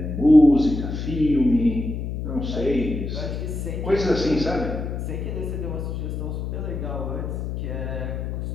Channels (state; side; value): noise; left; hum, 4 dB below the sound